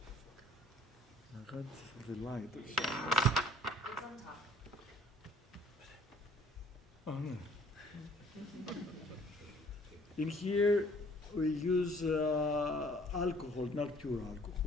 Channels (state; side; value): normal; both; correlation 0.56